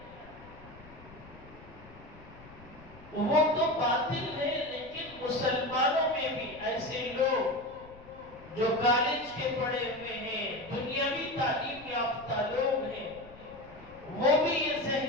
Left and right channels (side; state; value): left; noise; rumble, 20 dB below the sound